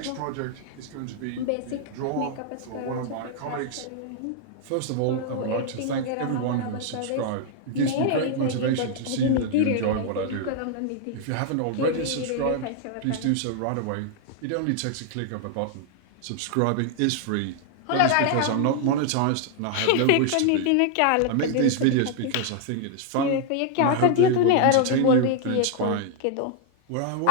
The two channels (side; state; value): both; different; correlation 0.00